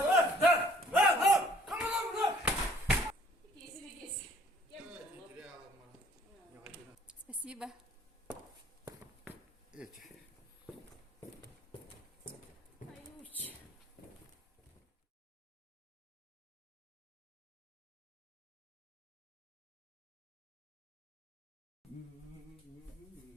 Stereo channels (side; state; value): both; normal; correlation 0.57